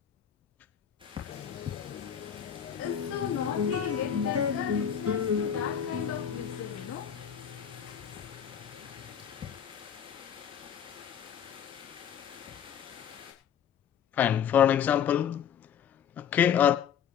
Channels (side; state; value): right; quieter; 8.5 dB